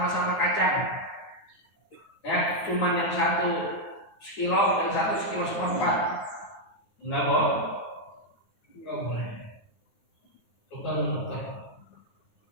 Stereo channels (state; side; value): late; right; 9.5 ms